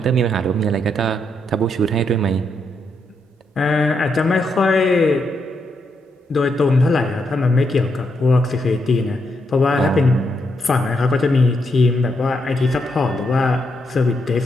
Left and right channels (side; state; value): both; normal; correlation 0.80